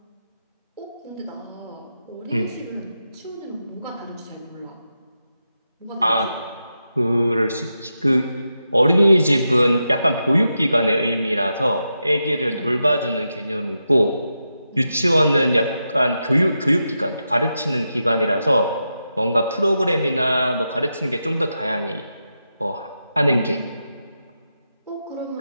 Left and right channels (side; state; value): both; inverted; correlation -0.87